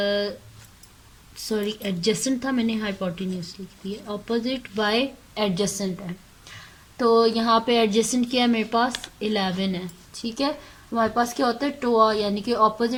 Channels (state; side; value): identical; both; correlation 1.00